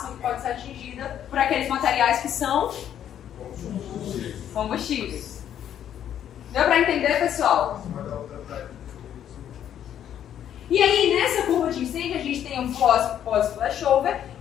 que pode ser atingida por aqueles materiais que são combustíveis. Deu para entender, pessoal? E aí, nessa curva de incêndio, a gente tem um pós-flashover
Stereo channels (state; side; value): quieter; right; 10.1 dB